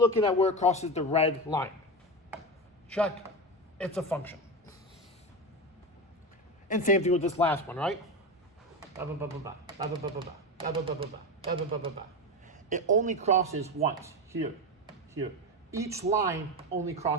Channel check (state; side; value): normal; both; correlation 0.19